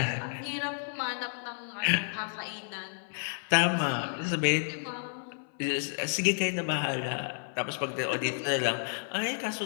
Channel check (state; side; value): silent; right; 57 dB below the other